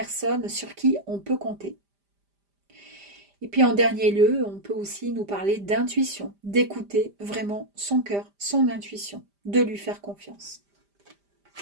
sur qui on peut compter. Et puis en dernier lieu, on peut aussi nous parler d'intuition, d'écouter vraiment son cœur, son intuition, de lui faire confiance.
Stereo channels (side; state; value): left; late; 5.0 ms